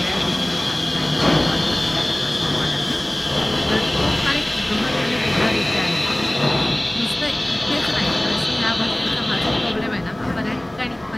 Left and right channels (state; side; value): noise; left; hum, 27 dB below the sound